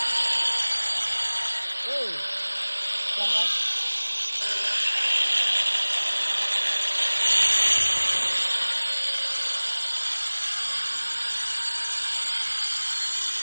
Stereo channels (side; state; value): both; inverted; correlation -1.00